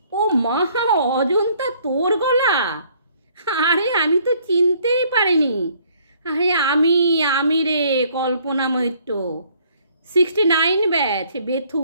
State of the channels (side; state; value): both; inverted; correlation -0.62